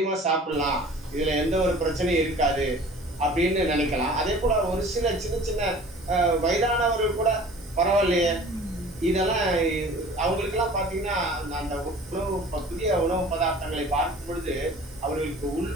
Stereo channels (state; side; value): normal; both; correlation 0.45